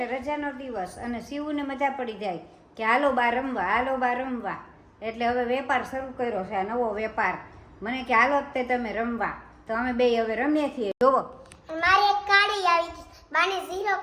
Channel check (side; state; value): both; identical; correlation 1.00